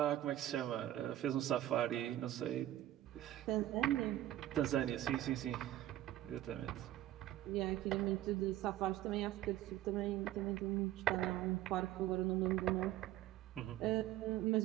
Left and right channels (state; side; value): quieter; left; 13.7 dB